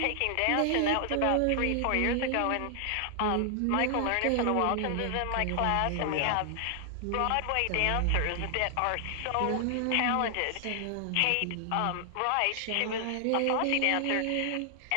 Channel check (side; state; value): both; different; correlation 0.00